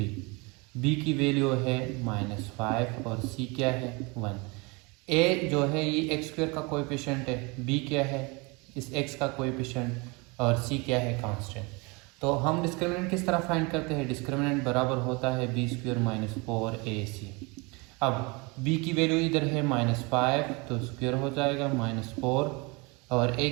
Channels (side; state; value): left; quieter; 27.8 dB